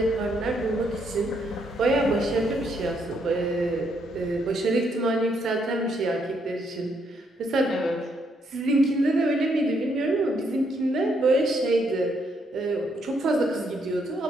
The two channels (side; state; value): both; normal; correlation 0.74